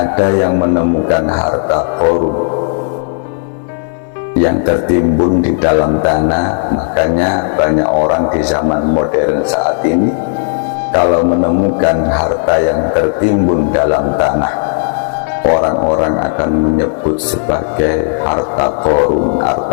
yang menemukan harta Qarun yang tertimbun di dalam tanah, makanya banyak orang di zaman modern saat ini kalau menemukan harta yang tertimbun dalam tanah, orang-orang akan menyebut sebagai harta Qarun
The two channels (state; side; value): silent; right; digital silence